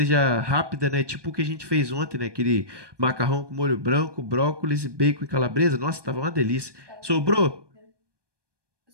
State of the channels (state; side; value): late; left; 1.2 ms